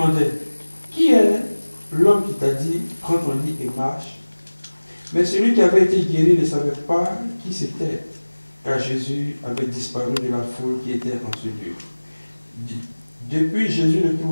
« Qui est l'homme qui t'a dit, prends ton lit et marche ?» Mais celui qui avait été guéri ne savait pas qui c'était, car Jésus avait disparu de la foule qui était en ce lieu. Depuis, Jésus le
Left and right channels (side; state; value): both; inverted; correlation -1.00